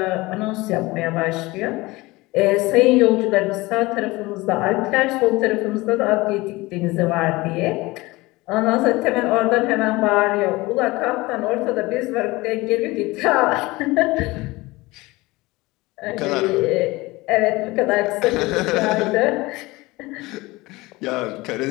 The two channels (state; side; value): quieter; right; 21.4 dB